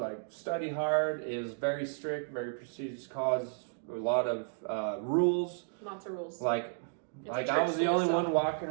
study hard. It was very strict, very prestigious college. A lot of rules. Lots of rules. I was the only one walking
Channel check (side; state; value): left; silent; digital silence